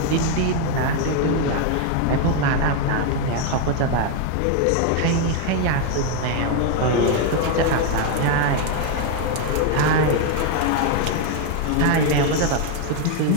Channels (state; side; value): different; both; correlation 0.01